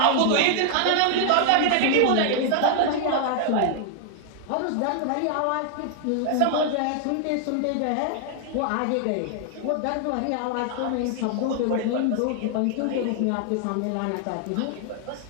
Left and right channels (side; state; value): both; different; correlation 0.00